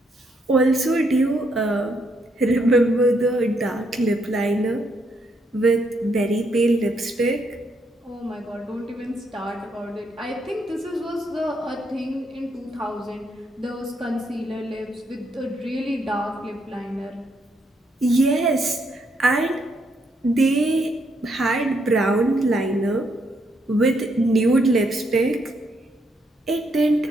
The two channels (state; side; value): normal; both; correlation 0.75